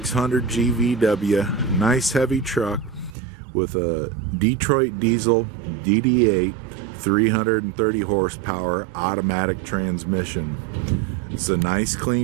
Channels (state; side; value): drops out; left; at 3.1 s